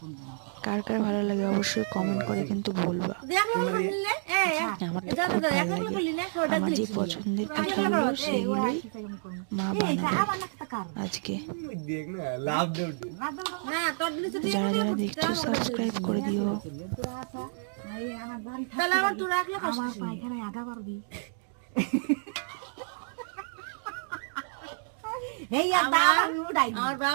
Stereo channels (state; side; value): silent; left; digital silence